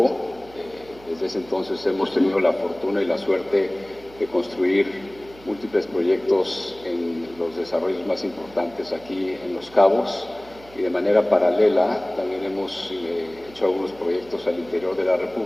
Desde ese entonces hemos tenido la fortuna y la suerte de construir múltiples proyectos en los desarrollos más importantes aquí en Los Cabos, y de manera paralela también hemos hecho algunos proyectos al interior de la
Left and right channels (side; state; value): right; noise; hum, 23 dB below the sound